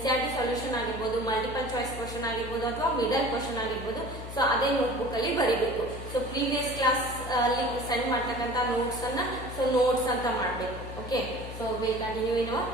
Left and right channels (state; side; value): noise; left; hum, 10 dB below the sound